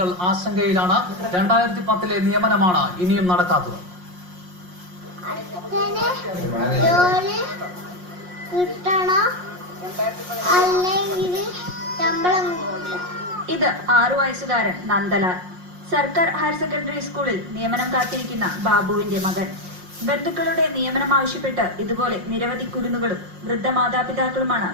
ആശങ്കയിലാണ്. 2010-ലെ നിയമനമാണ് ഇനിയും നടക്കാത്തത്. ഇത് 6 വയസ്സുകാരൻ നന്ദലാൽ. സർക്കാർ ഹയർ സെക്കൻഡറി സ്കൂളിൽ നിയമനം കാത്തിരിക്കുന്ന ബാബുവിന്റെ മകൻ. ബന്ധുക്കളുടെ നിയമനം ആവശ്യപ്പെട്ട് ഇതുപോലെ നിരവധി കുരുന്നുകളും വൃദ്ധ മാതാപിതാക്കളുമാണ്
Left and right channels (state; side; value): late; left; 5.6 ms